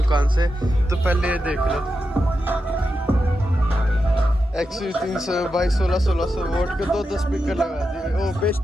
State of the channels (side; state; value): both; normal; correlation 0.88